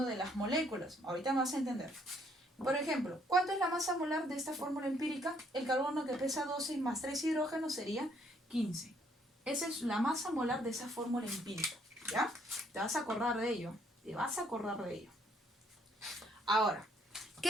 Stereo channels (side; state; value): both; normal; correlation 0.67